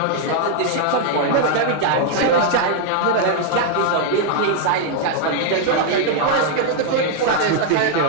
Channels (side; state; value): both; different; correlation 0.00